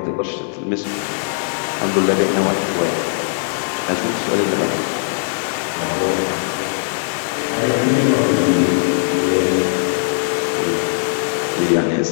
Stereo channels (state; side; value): silent; right; digital silence